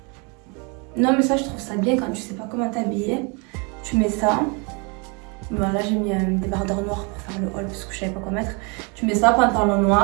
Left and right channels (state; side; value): quieter; left; 32.2 dB